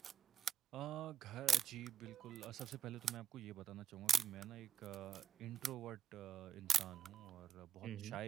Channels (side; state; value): left; quieter; 8.6 dB